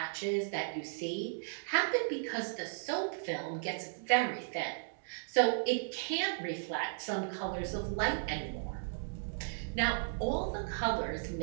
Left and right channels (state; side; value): silent; left; digital silence